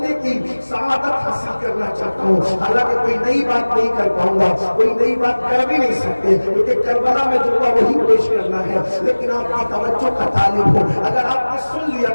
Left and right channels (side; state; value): both; inverted; correlation -1.00